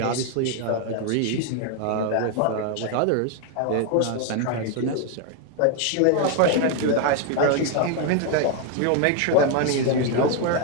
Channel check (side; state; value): both; different; correlation 0.01